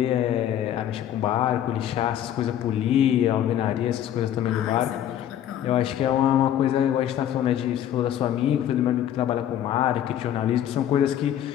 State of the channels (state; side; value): quieter; right; 10.9 dB